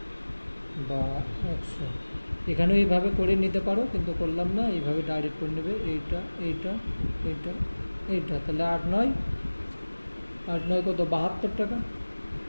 বা 100। এখানেও এইভাবে করে নিতে পারো, কিন্তু করলাম না, এইভাবে ডাইরেক্ট করে নেবে। এইটা এইটা এইটা এইটা, তাহলে 8 9 কত, 72 টাকা।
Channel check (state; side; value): inverted; both; correlation -1.00